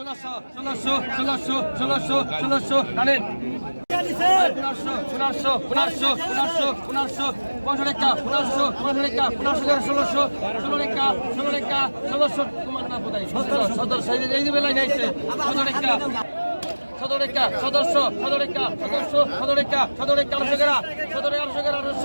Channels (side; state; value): both; inverted; correlation -1.00